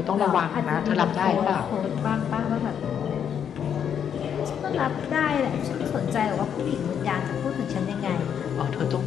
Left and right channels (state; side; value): quieter; right; 8.4 dB